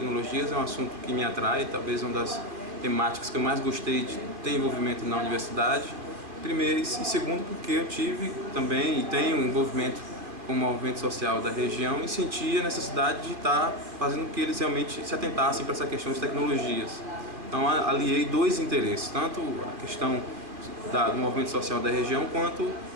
é um assunto que me atrai, talvez uma das temáticas que eu mais gostei de ter envolvimento na universidade. Primeiro e segundo porque eu tive também e tenho envolvimento com o movimento social da região e sentia a necessidade de estar fazendo com que eles realmente se atentassem para essa questão de tecnologias. Então aliei dois interesses, tanto a questão do movimento social da região quanto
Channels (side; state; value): left; late; 2.4 ms